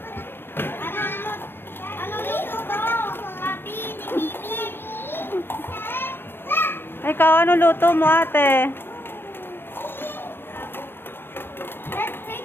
Anong luto ko? Papi ni Mimi. Ikaw, ano luto mo, ate? Let's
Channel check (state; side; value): late; right; 0.10 ms